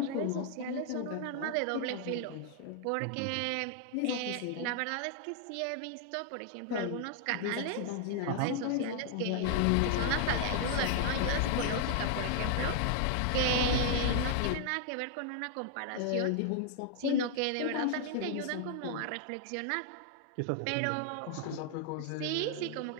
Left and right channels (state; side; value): different; both; correlation 0.00